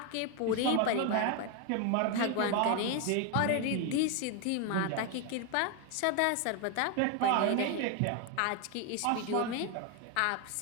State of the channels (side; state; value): both; different; correlation 0.01